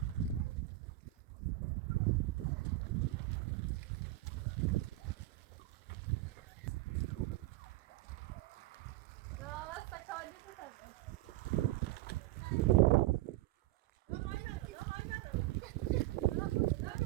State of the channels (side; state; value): left; quieter; 16.8 dB